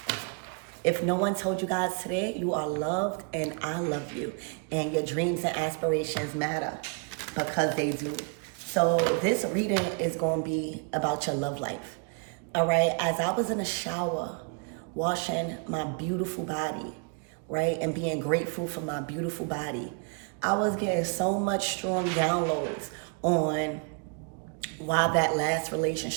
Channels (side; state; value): left; quieter; 34.6 dB